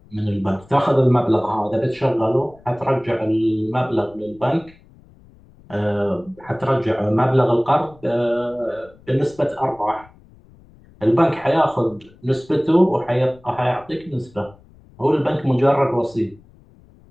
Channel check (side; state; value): left; noise; rumble, 26 dB below the sound